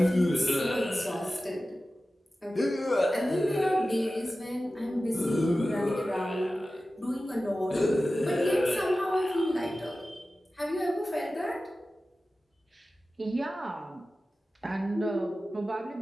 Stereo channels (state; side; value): normal; both; correlation 0.95